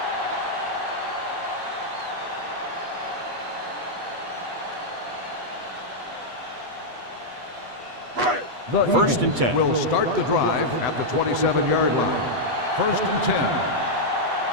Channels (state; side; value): late; left; 8.2 ms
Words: The 1st and 10. Will start the drive at the 27-yard line. 1st and 10.